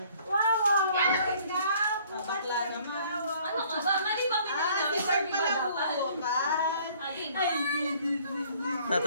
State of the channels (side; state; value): both; inverted; correlation -0.57